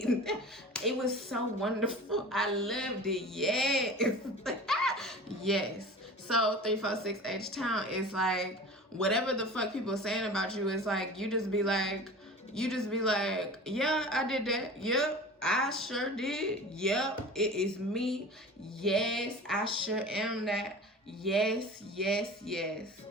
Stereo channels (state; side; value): normal; both; correlation 0.37